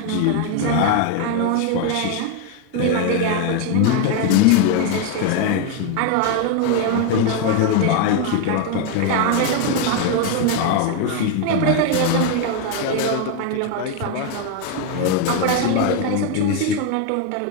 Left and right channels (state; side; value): different; both; correlation 0.01